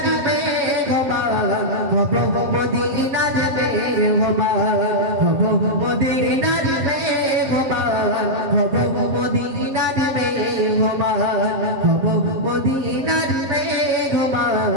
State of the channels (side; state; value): left; late; 7.4 ms